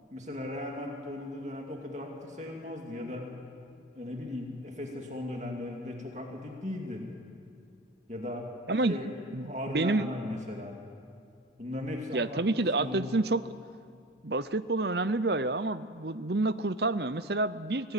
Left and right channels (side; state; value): both; normal; correlation 0.33